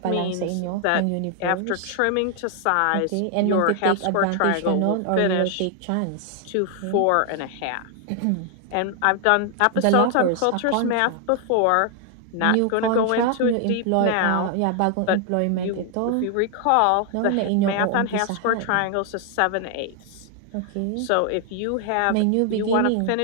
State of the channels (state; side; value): different; both; correlation 0.00